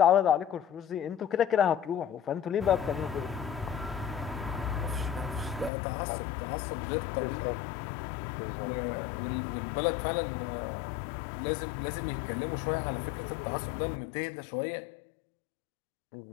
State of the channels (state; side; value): drops out; right; at 5.7 s